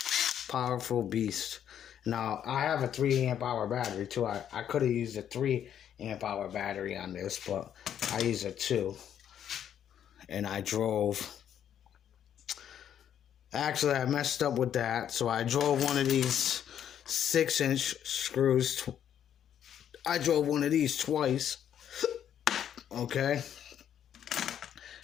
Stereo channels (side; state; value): right; quieter; 9.6 dB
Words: powerful beast. Now, I have a 3 amp hour battery too. I could have used a 3 amp hour battery on this, but I used a 2. And I drove. Actually, I messed up with that. So I drove one of these 6-inch screws. I drove one of these twice. Okay.